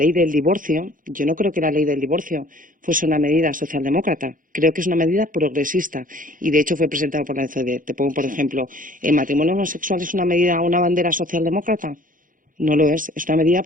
del divorcio, yo no creo que la ley del divorcio fuese una medida socialdemócrata, creo que es una medida progresista y de hecho fue presentado por la OCDE. Te pongo por ejemplo, ¿el matrimonio homosexual es una bandera socialdemócrata? No lo es una medida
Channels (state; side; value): late; left; 0.39 ms